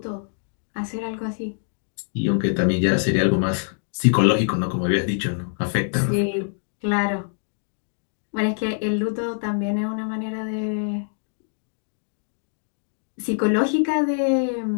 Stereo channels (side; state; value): right; silent; digital silence